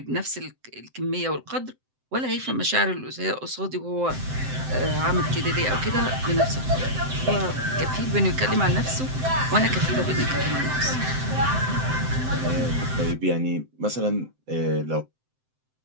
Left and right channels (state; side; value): late; left; 7.7 ms